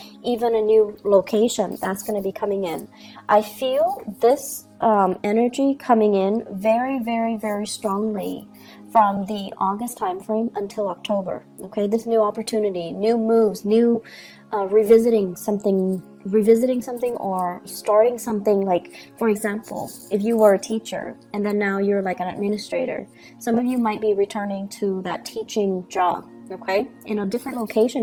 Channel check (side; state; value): both; identical; correlation 1.00